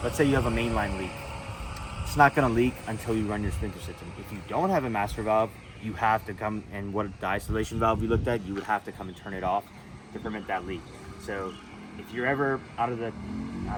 let's say you have a mainline leak. It's not going to leak until you run your sprinkler system. If you don't have a master valve, you have to come, and what the isolation valve we looked at, you would have to come and turn it off to prevent that leak. So if you're ever out of the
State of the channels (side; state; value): both; identical; correlation 1.00